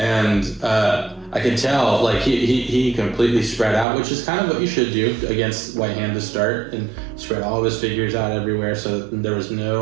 I could tell, he completely spread out, which is kind of what you should do against White Hand to start, and spread all of his figures out everywhere so that there was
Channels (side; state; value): left; drops out; at 3.9 s